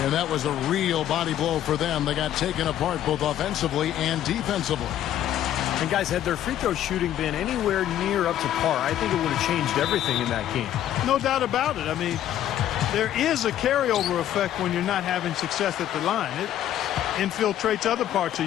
And that was a real body blow for them. They got taken apart both offensively and defensively. And guys, had their free throw shooting been anywhere near up to par, I think it would have changed everything in that game. No doubt about it. I mean, there is a carryover effect when you're not having success at the line. It infiltrates other parts of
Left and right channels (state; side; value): quieter; right; 11.6 dB